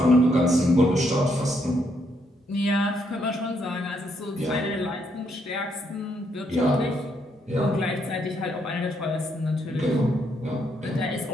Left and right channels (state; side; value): normal; both; correlation 0.75